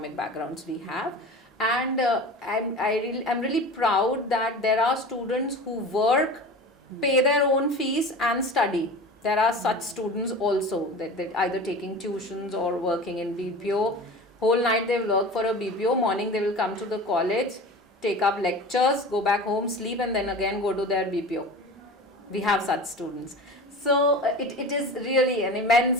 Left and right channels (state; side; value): normal; both; correlation 0.34